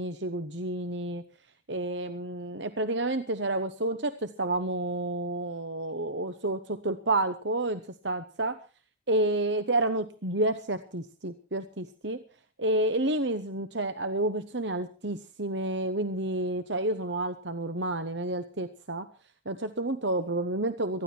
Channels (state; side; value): normal; both; correlation -0.15